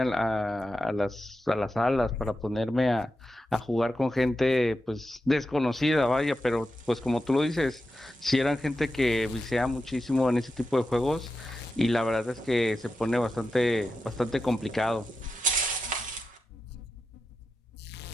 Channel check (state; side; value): normal; both; correlation 0.90